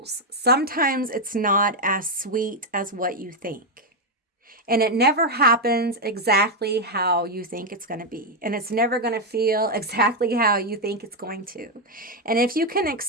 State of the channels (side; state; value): both; normal; correlation 0.03